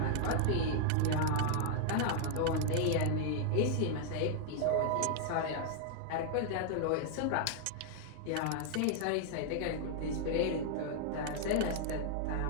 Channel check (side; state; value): both; different; correlation 0.00